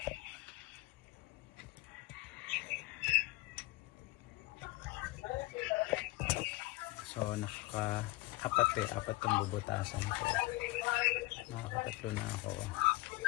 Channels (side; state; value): right; quieter; 20.4 dB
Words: So apat ang bubutasan ko. Nakakatatlo na ako.